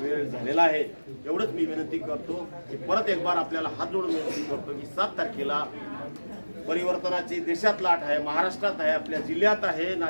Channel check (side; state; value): both; inverted; correlation -1.00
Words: झालेला आहे. एवढंच मी विनंती करतो की परत एक बार आपल्याला हात जोडून विनंती करतो की 7 तारखेला परिवर्तनाची देशात लाट आहे, महाराष्ट्रात आहे, आपल्या जिल्ह्यात आहे.